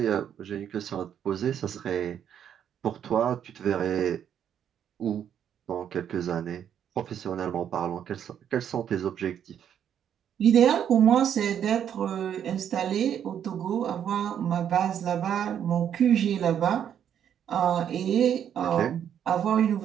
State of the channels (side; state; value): left; quieter; 9.2 dB